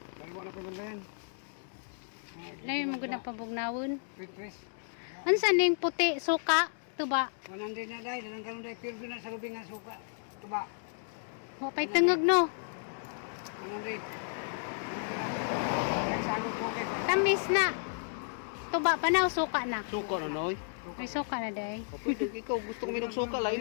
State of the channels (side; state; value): right; silent; digital silence